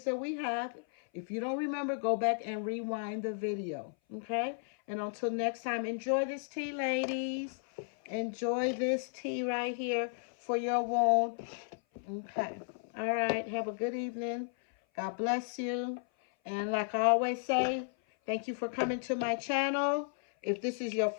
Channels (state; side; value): silent; right; 55 dB below the other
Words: that we have. If you don't remember, go back and rewind the video. Okay. And until next time, enjoy this tea, ladies. Enjoy this tea right here for your wound. Okay. All right. Have a good evening. God bless you. And like I always say, thank you for coming to my channel. If this is your